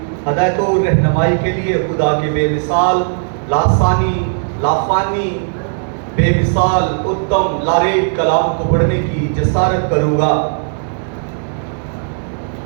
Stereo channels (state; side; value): silent; left; digital silence